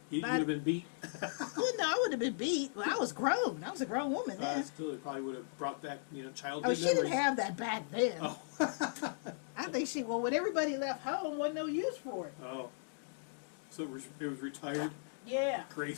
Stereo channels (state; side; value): silent; right; digital silence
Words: You'd have been beat. well, no, I would have been beat. Well, I was grown. I was a grown woman then. Still, it probably would have brought back, childhood Oh, she memories. didn't have that back then. Oh. I think when everybody left home, wasn't no use for it. Oh. So it was retired Yeah. I